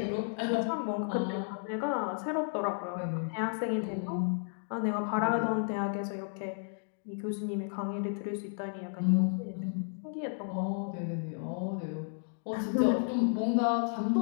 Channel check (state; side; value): silent; right; 56 dB below the other